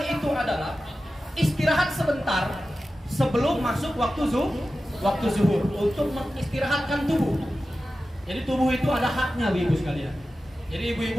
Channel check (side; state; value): both; normal; correlation 0.94